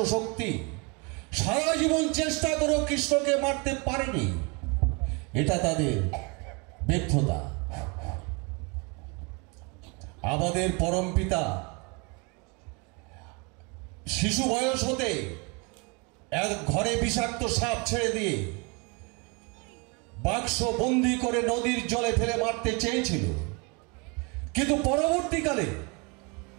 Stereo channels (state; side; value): quieter; left; 30.8 dB